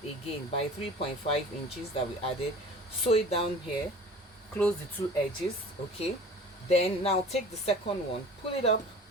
again by 3.5 inches that we added, sew it down here, close the two edges. Okay, then now take the second one, pull it up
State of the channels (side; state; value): both; normal; correlation 0.42